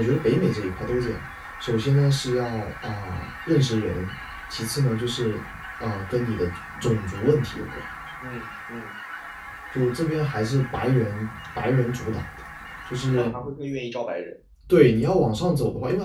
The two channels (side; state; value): both; identical; correlation 1.00